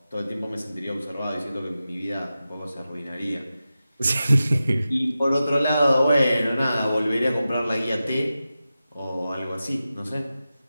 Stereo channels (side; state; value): both; inverted; correlation -0.93